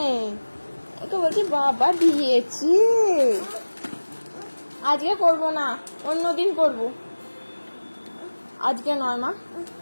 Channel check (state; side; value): inverted; both; correlation -1.00